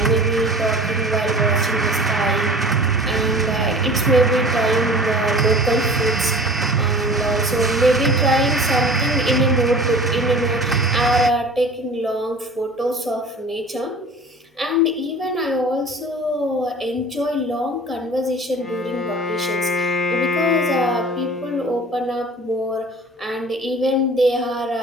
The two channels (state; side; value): normal; both; correlation 0.43